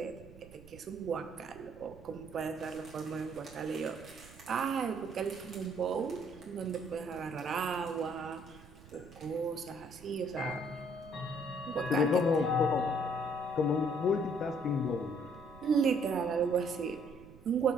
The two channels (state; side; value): noise; right; rumble, 20 dB below the sound